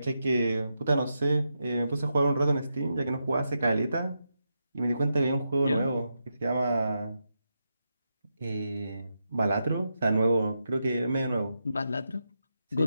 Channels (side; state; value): both; inverted; correlation -0.86